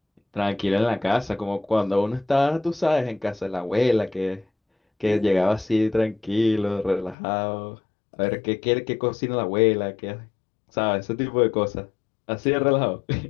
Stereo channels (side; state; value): right; drops out; at 7.2 s